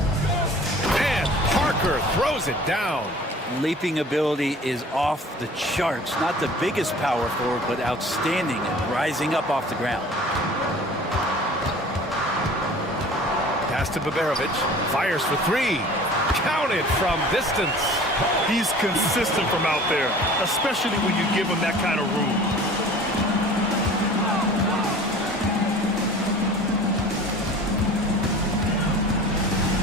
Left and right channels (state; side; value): normal; both; correlation 0.45